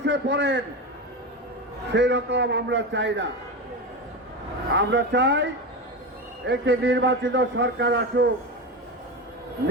পড়েন, সেই রকম আমরা চাই না। আমরা চাই একটি নির্বাচিত সরকার আসুক।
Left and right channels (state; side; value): normal; both; correlation 0.20